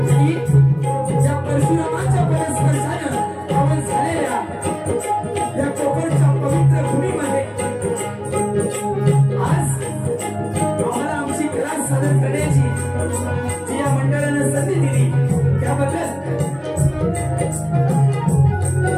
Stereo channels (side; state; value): both; identical; correlation 1.00